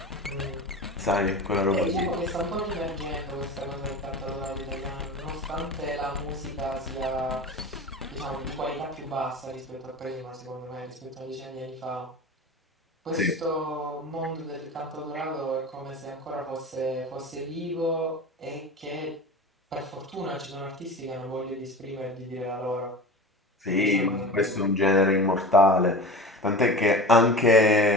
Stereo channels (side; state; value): both; normal; correlation 0.33